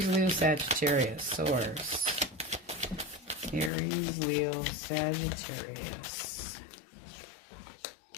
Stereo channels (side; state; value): right; drops out; at 3.7 s